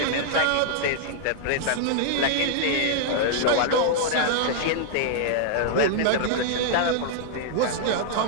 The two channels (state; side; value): different; both; correlation -0.01